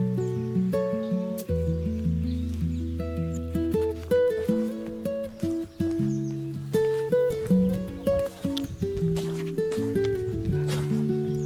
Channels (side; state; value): both; identical; correlation 1.00